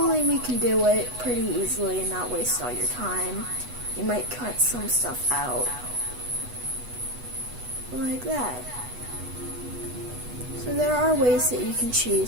we can do it pretty easily and not waste all your time. You might cut some stuff out. Like that. So there are ways that you can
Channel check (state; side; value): late; left; 8.1 ms